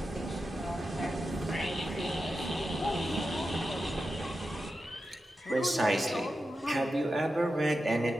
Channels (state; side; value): normal; both; correlation 0.90